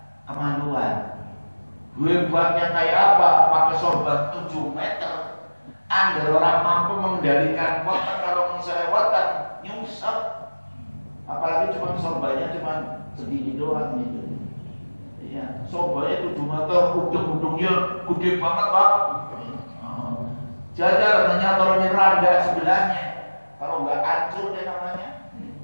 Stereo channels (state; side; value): inverted; both; correlation -1.00